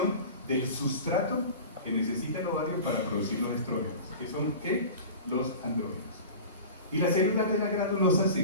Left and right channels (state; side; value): inverted; both; correlation -0.36